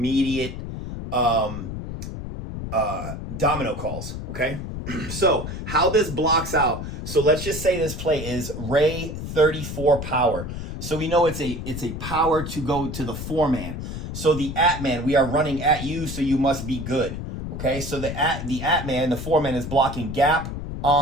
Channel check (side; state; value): left; noise; rumble, 7 dB below the sound